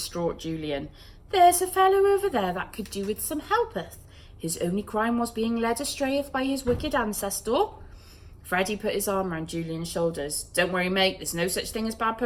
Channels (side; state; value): both; identical; correlation 1.00